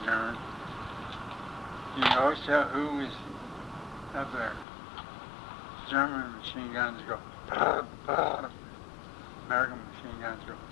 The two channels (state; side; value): drops out; right; at 4.7 s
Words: German. You can always tell who was up there. German machine guns go, bah, bah. American machine guns go,